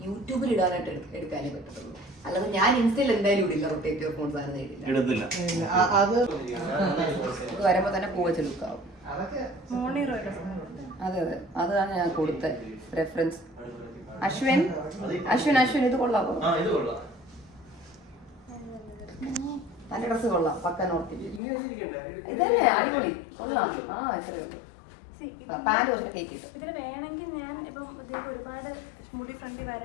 യൂട്യൂബിൽ ഇടാനായിട്ട് എടുക്കാനേ പറ്റത്തുള്ളൂ. അല്ലാതെ ഞാൻ ഇൻസ്റ്റയിൽ എന്തായാലും ഇടില്ല, റൊട്ടേറ്റീവ് ഫോൺ സാധനം ഇടില്ല. അത് വരുമ്പോ തന്നെ പൂവച്ച് ലുക്കാവും. അതെ അതെ, അതാണ് ഞാൻ കൊടുത്ത റെഫറൻസ്. അശ്വിൻ ഇത് കൊള്ളാമോ? നല്ല ഡ്രസ് കൊള്ളാം, പക്ക നോർത്ത്. ഇതല്ലേ അടിപൊളി, കൊള്ളാം. ഇത്രയേ ഉള്ളൂ. പാന്റ് കുറച്ച് കേക്കിട്ടു. ഇതിന് വേണമെങ്കിൽ ഞാൻ ഇപ്പം ഒരുപാട് മുടി ഫ്രണ്ടി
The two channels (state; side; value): drops out; right; at 21.4 s